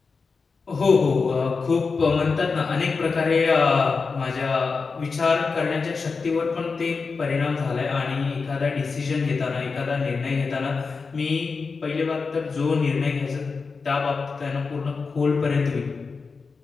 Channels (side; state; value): right; quieter; 4.7 dB